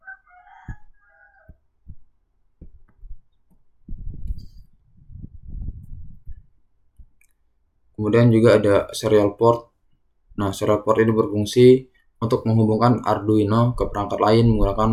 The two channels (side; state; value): both; identical; correlation 1.00